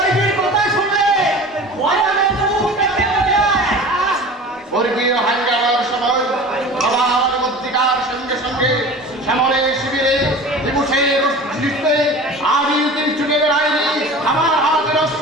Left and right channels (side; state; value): both; normal; correlation 0.38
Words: কথা শুনলে ময়দানে তো মুখ দেখতে পাওয়া যায়। বর্গীয় হাঙ্গামার সময় সবার মধ্যিকার সঙ্গে সঙ্গে শ্যামলে শিবিরে দিবসের দৃষ্টিতে আমি ছুটে বেড়াইনি। আমার হাতের